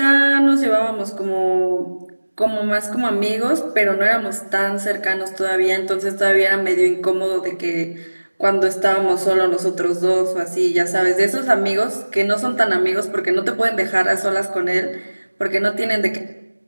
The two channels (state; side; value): inverted; both; correlation -1.00